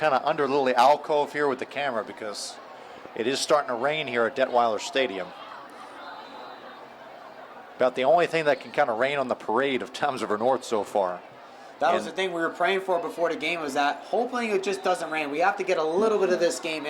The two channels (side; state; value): both; identical; correlation 1.00